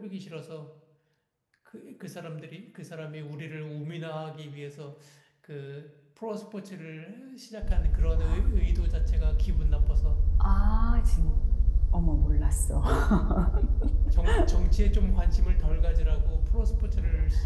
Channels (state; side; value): identical; both; correlation 1.00